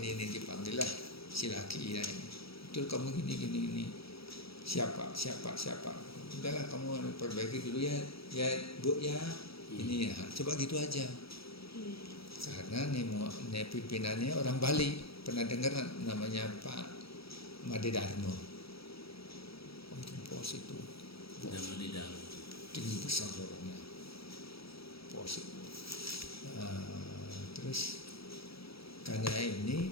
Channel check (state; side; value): late; right; 0.76 ms